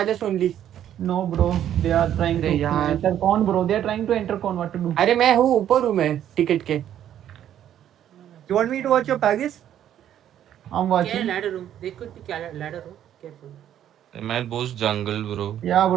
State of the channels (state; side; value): quieter; left; 10.8 dB